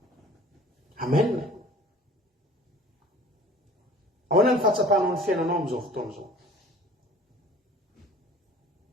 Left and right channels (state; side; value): normal; both; correlation 0.47